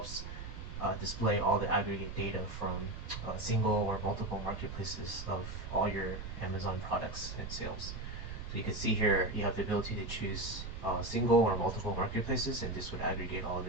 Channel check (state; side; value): noise; right; rumble, 8 dB below the sound